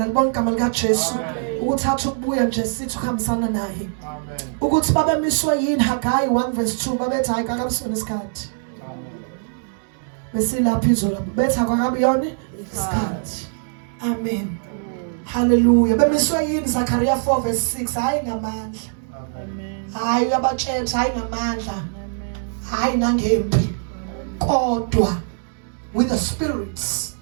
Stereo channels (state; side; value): silent; left; 64 dB below the other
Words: alibonke igama lika Jesu ukuthatha ukubuya nje sithi ukuhambisana naye. Amen. Ukuthi babemiswa yini Haggai 1:2 babethi hayi kakabusona isikhathi. Besilapha izolo bethi akabi yona isikhathi. Amen. Hallelujah. Bemiswa yini Zechariah 4:6 hayi ngamandla. Amen. Hayi abatshela hayi ngamandla. Hayi nangempi. Kodwa with the spirits.